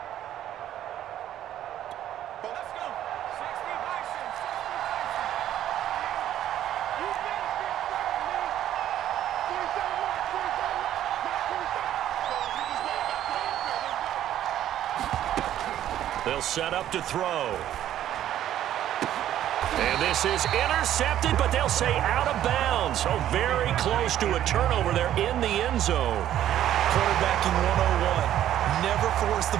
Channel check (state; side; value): quieter; left; 11.8 dB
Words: They'll set up to throw. And this is intercepted, but they'll say out of bounds. Oh, very close to a turnover there in the end zone. Quarterbacking 101. Never force the